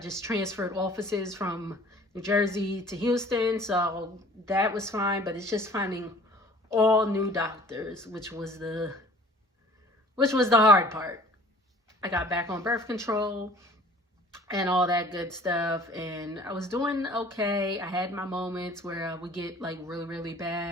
transferred offices from New Jersey to Houston. So that was fine. But it's just finding all new doctors, which was the hard part. I got back on birth control and all that good stuff. And I was doing okay. I had my moments where I would get like really, really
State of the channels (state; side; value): normal; both; correlation 0.50